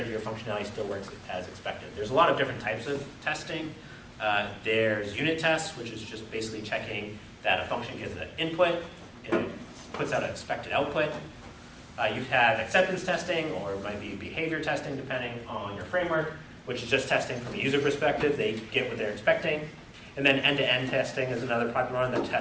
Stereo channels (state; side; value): identical; both; correlation 1.00